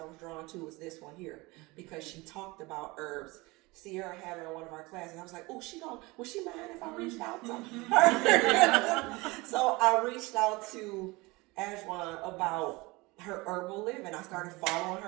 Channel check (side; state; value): left; quieter; 23.4 dB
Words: was drawn to was this one here because she talked about herbs. Sierra had her in one of our classes. I was like, oh, would she mind if I reached out to her? So I reached out to Ajwan about her herbal living. I started following